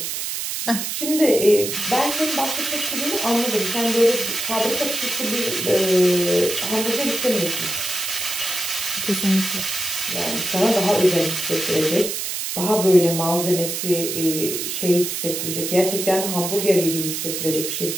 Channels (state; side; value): noise; right; hiss, 3 dB below the sound